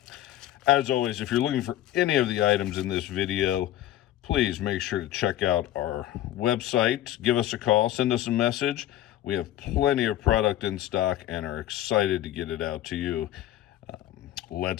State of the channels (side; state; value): right; quieter; 13.1 dB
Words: As always, if you're looking for any of the items in this video, please make sure to check out our website. Give us a call, send us a message. We have plenty of product in stock and are excited to get it out to you.